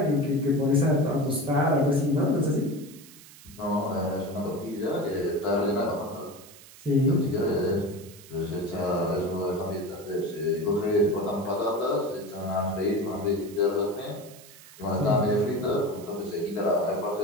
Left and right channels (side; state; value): right; noise; hiss, 20 dB below the sound